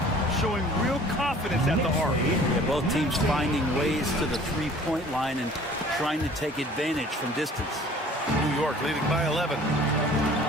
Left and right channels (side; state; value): both; normal; correlation 0.50